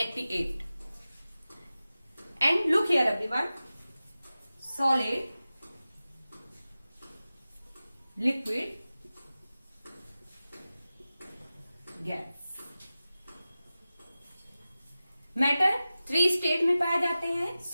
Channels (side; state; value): both; inverted; correlation -0.95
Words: And look here everyone. Solid, liquid, gas. Matter 3 state में पाए जाते हैं,